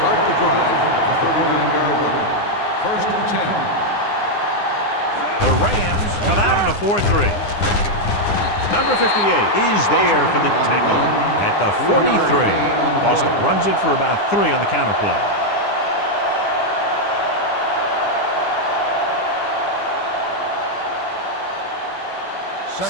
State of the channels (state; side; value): late; right; 9.9 ms